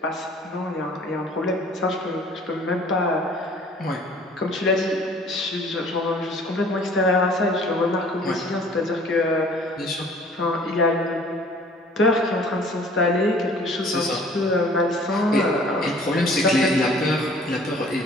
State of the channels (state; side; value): normal; both; correlation 0.52